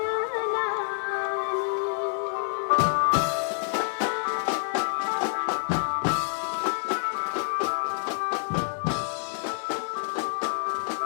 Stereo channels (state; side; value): silent; right; 60 dB below the other